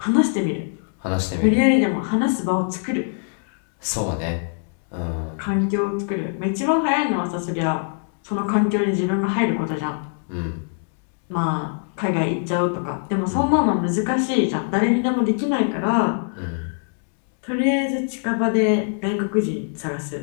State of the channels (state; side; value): silent; right; 62 dB below the other